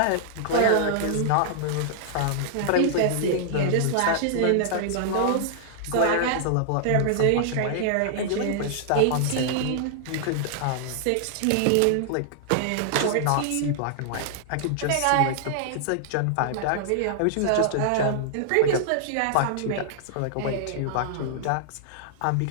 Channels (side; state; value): both; different; correlation -0.01